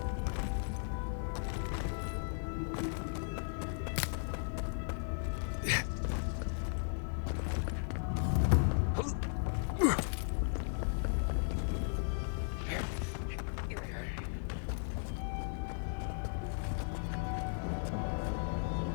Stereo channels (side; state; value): right; silent; 54 dB below the other